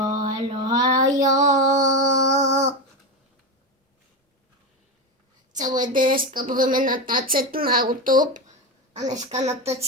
Celé dneska budeme natáčet na YouTube a dneska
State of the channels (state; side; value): normal; both; correlation 0.16